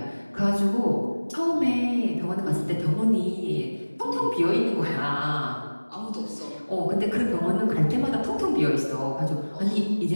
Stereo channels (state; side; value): inverted; both; correlation -1.00